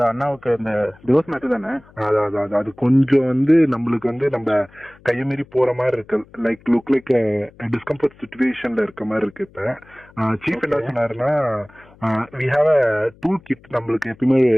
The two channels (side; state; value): left; noise; hum, 27 dB below the sound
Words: அண்ணாவுக்கு இந்த டிவோர்ஸ் மேட்டர் தானே? அது கொஞ்சம் நம்மளுக்கு நம்ம கையமீறி போற மாதிரி இருக்கு. லுக் லைக் டிஸ்கம்ஃபர்ட் சிச்சுவேஷன்ல இருக்க மாதிரி இருக்கு. இப்ப சீஃப் என்ன சொன்னாருன்னா, we have a tool kit. நம்மளுக்கு எப்பயுமே